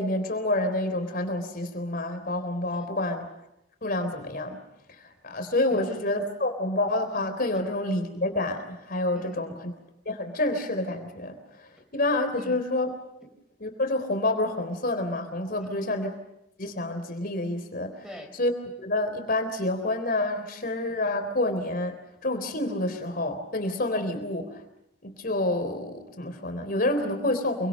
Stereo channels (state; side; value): normal; both; correlation 0.03